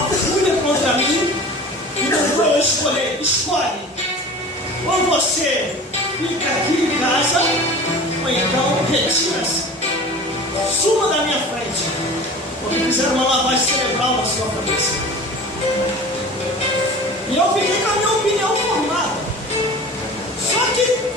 fúria contra mim e mandou eu escolher. Escolhe. Ou você fica aqui em casa, ou então retira-se. Suma da minha frente. Porque fizeram uma lavagem cerebral na sua cabeça. E eu fiquei com a minha opinião formada. Só que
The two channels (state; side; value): normal; both; correlation 0.39